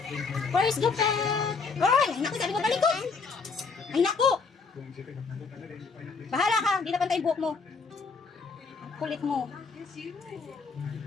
Where's gupit? Ay, naku, sabi ko talikod. Ay, naku. Bahala ka, hindi na pantay yung buhok mo. Ang kulit mo.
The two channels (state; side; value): quieter; right; 4.8 dB